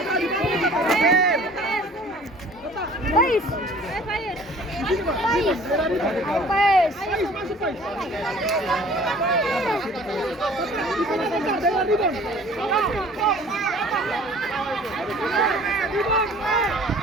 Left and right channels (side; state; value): both; normal; correlation 0.50